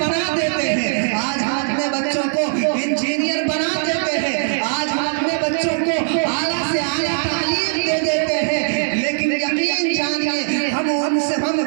देते हैं। आज हम अपने बच्चों को इंजीनियर बना देते हैं। आज हम अपने बच्चों को आला से आला तालीम दे देते हैं। लेकिन यकीन जानिए हम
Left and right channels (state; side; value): silent; left; digital silence